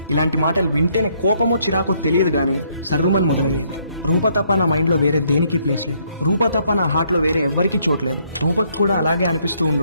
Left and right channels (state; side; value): inverted; both; correlation -0.69